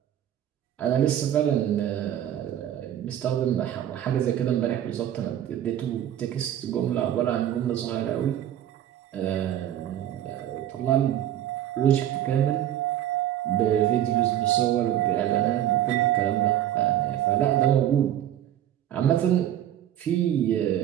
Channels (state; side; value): quieter; left; 11.4 dB